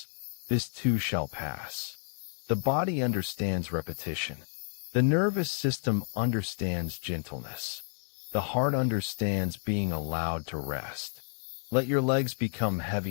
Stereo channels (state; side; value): silent; right; 57 dB below the other